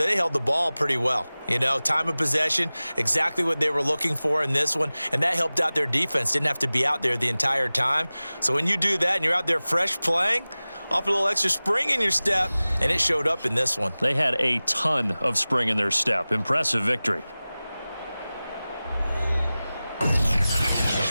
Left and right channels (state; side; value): inverted; both; correlation -0.98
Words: held the ball pretty well. You know, time of possession, exactly what they were looking for in this one, and that helped out their defense. Didn't have to be out there the entire time. So when you do that and you're out there fresh playing, off a little extra spring in your step, and it showed up in this one. They had a ton of spring in their step. Impressive victory.